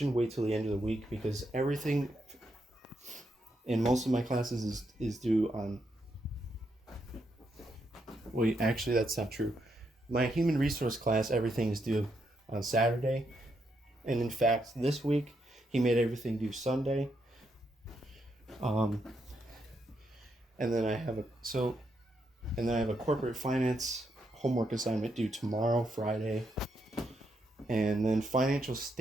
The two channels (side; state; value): both; normal; correlation 0.79